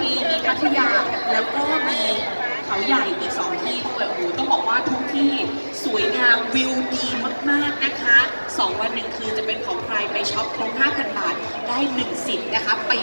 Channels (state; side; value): inverted; both; correlation -1.00